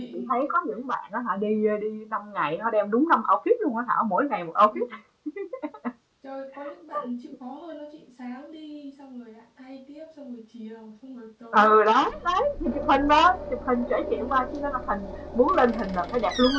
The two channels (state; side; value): identical; both; correlation 1.00